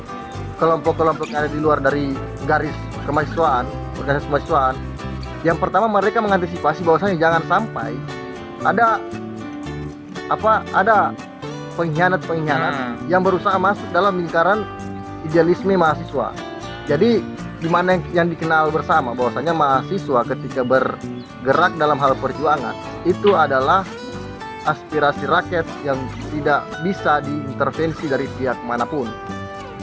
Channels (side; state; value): both; identical; correlation 1.00